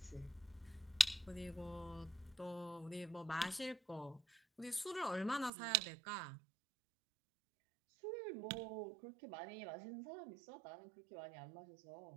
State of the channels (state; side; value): drops out; left; at 5.5 s